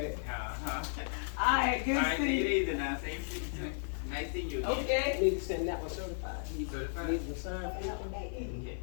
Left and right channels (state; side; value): silent; right; 55 dB below the other